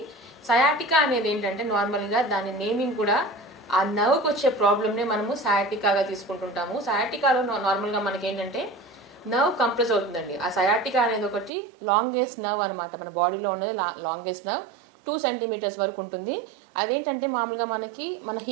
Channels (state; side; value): drops out; left; at 11.5 s